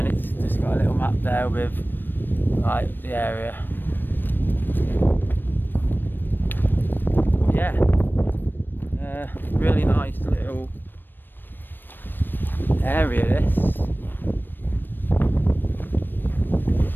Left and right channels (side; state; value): right; late; 0.094 ms